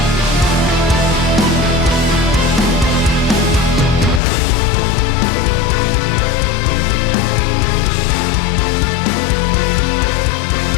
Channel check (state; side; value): drops out; right; at 4.2 s